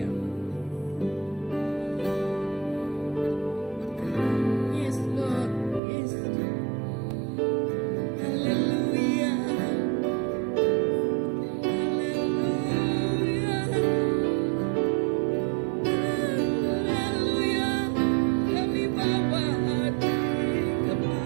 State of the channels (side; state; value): left; drops out; at 5.8 s